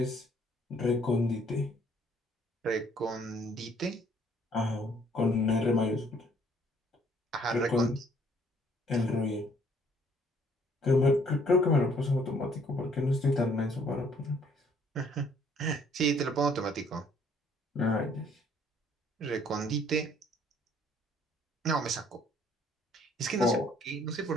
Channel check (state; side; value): normal; both; correlation 0.62